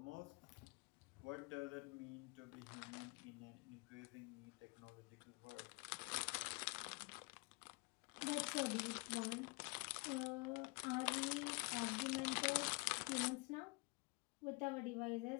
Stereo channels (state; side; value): quieter; right; 29.2 dB